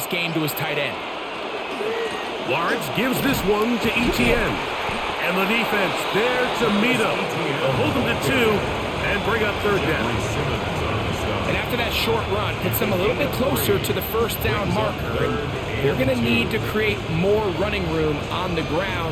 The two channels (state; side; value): identical; both; correlation 1.00